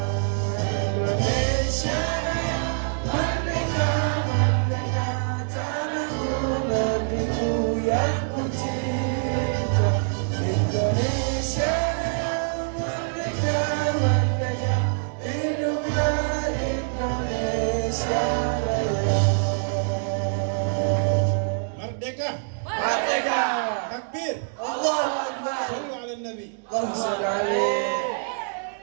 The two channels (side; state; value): left; silent; digital silence